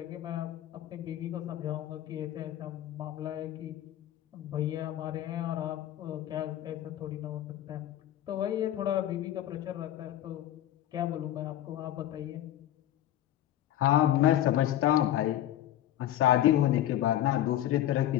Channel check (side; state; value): right; quieter; 12.6 dB